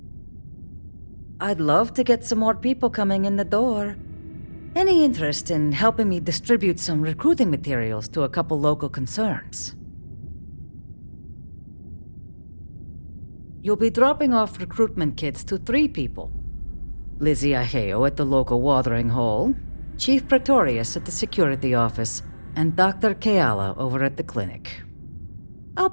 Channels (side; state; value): both; inverted; correlation -1.00